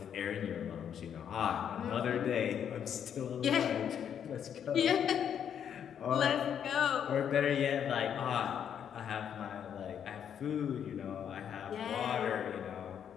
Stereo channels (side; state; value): right; quieter; 8.6 dB